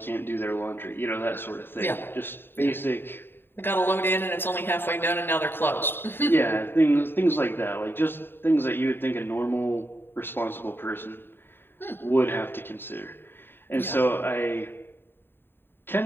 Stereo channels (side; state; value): right; late; 0.10 ms